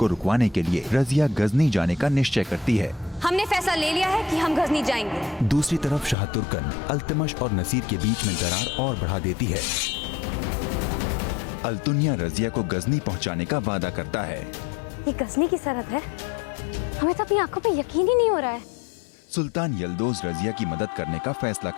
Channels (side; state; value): right; drops out; at 6.2 s